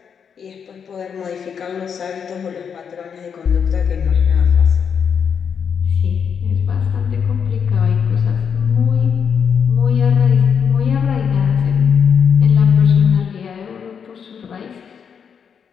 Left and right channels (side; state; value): right; quieter; 7.0 dB